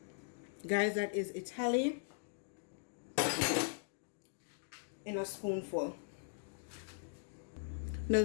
Guys, that is Italy in a spoonful. Now,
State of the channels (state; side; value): silent; right; digital silence